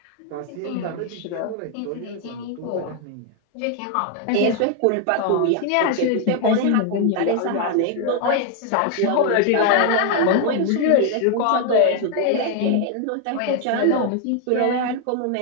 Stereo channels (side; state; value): both; different; correlation 0.00